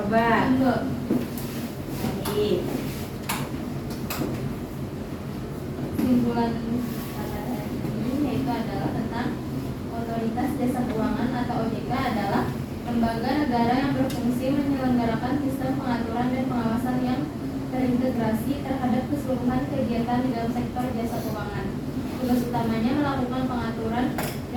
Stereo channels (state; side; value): identical; both; correlation 1.00